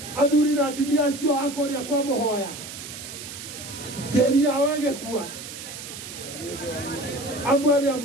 Athuri na atumia acio a kũrĩa kwa Mũhoya, tĩri yao ĩgĩkua, amwe arĩa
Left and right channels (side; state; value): right; noise; hiss, 11 dB below the sound